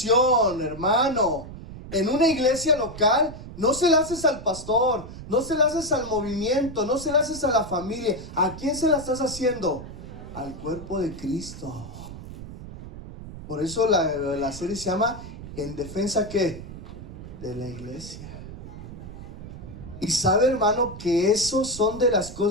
hermano, en una iglesia local, no se la haces al pastor, no se la haces al movimiento, no se la haces a la familia. ¿A quién se la estás haciendo? Al cuerpo de Cristo. Por eso la serie se llama ¿En defensa qué? De la iglesia. Y sabe, hermano, que eso son de las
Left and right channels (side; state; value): right; noise; rumble, 12 dB below the sound